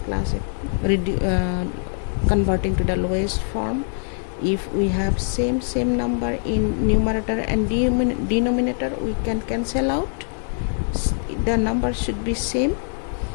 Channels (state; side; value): silent; right; 60 dB below the other